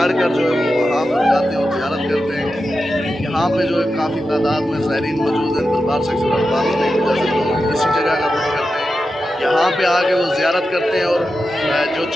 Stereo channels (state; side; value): normal; both; correlation 0.90